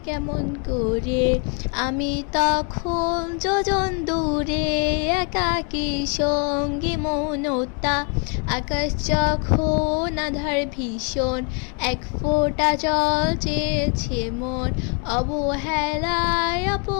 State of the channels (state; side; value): quieter; right; 37.6 dB